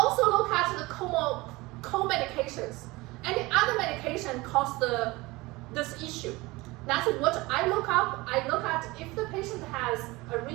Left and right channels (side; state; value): left; quieter; 21.8 dB